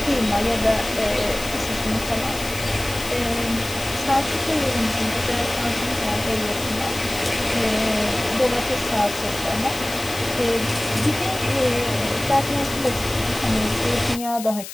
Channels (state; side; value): noise; left; hiss, 11 dB below the sound